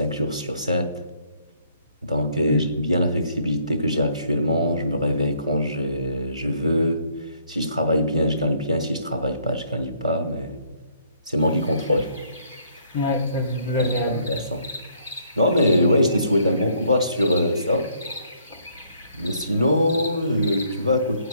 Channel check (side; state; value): both; inverted; correlation -0.65